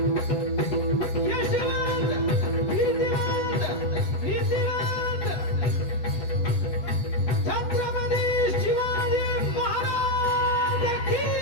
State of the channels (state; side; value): late; right; 8.3 ms